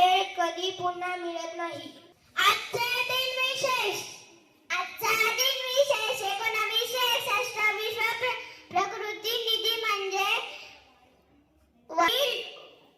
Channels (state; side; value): identical; both; correlation 1.00